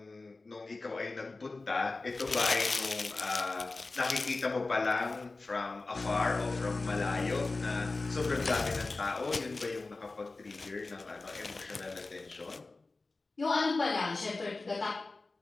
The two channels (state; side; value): quieter; right; 3.5 dB